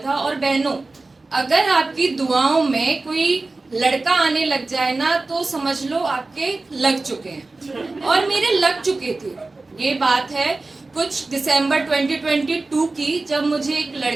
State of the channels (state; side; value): quieter; left; 3.4 dB